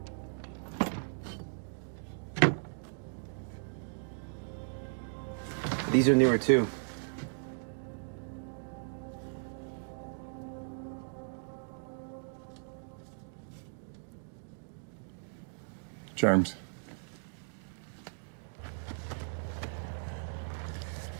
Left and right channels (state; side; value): silent; left; digital silence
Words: These are newer too. Germs.